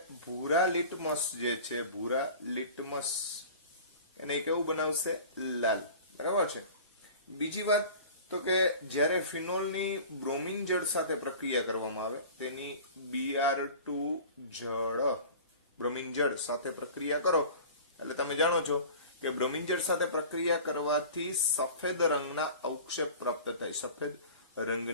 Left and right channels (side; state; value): both; inverted; correlation -0.40